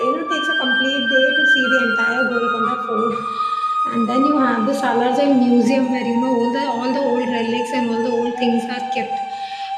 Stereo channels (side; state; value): both; identical; correlation 1.00